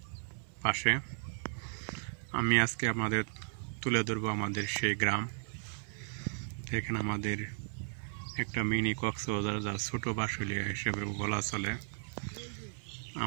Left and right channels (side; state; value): left; silent; 54 dB below the other